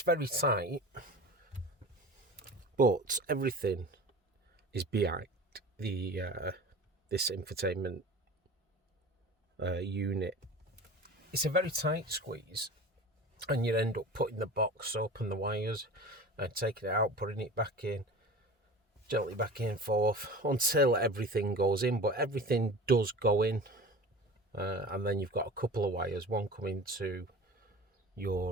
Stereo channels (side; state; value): both; normal; correlation 0.37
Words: very tight, but everything is behind the this infotainment unit. It's a very tight squeeze, and you end up putting the box up and the wires and taking it out, putting it back in, gently back and forth until everything goes in. But everything does go in, and then you've got a couple of wires, one coming to